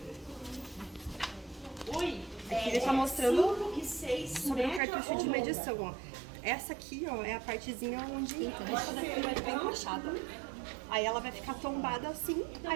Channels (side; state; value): left; drops out; at 4.8 s